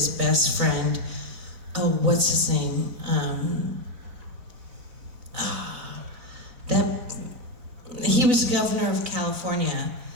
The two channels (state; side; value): late; left; 4.0 ms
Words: best friend. Oh, what's his name? He was governor of California.